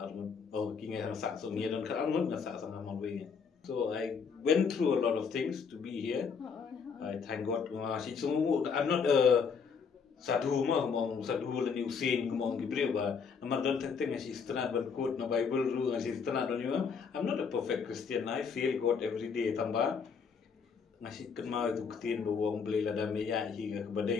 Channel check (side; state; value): right; quieter; 5.9 dB